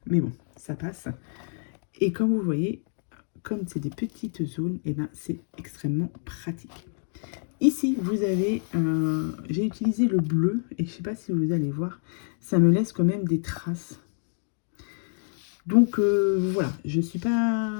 mais bon, ça passe. Et comme vous voyez, comme c'est des petites zones, et ben c'est extrêmement pratique. Ici, vous avez, j'ai utilisé le bleu, et je ne sais pas si vous allez voir, ça me laisse quand même des traces. Donc, voilà, je ne suis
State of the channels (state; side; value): silent; right; 60 dB below the other